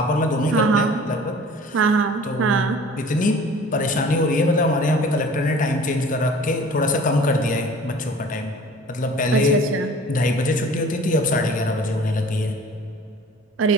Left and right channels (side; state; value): both; normal; correlation 0.46